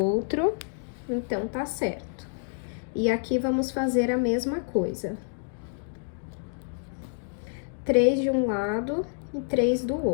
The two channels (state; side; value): silent; right; 59 dB below the other